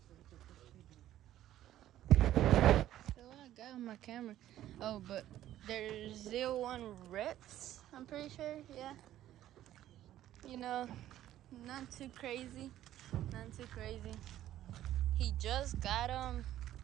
So I got on my camera. Oh, but there's 01 reps, I'm pretty sure, yeah. You know, not too crazy. Not too crazy. He just got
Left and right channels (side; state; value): left; quieter; 12.9 dB